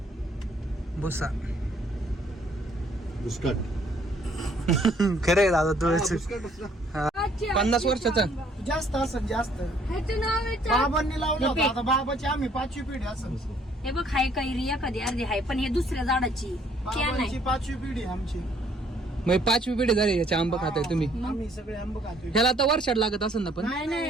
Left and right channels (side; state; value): both; normal; correlation 0.63